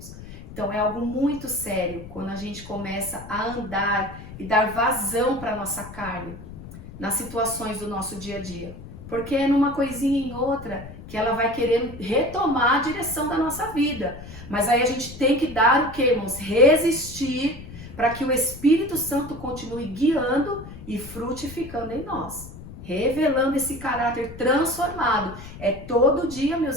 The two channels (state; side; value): noise; left; rumble, 14 dB below the sound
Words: Então é algo muito sério quando a gente começa a andar e dar vazão para a nossa carne nas situações do nosso dia a dia. Porque é numa coisinha em outra que ela vai querer retomar a direção da nossa vida. Mas aí a gente tem que dar o que, irmãos? Resistir para que o Espírito Santo continue guiando e frutificando em nós. Revelando esse caráter transformado. É todo dia,